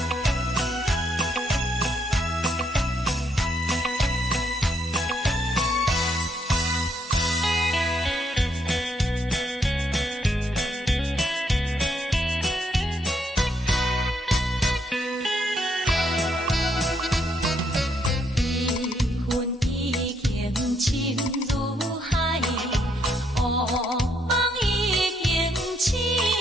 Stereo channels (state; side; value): normal; both; correlation 0.74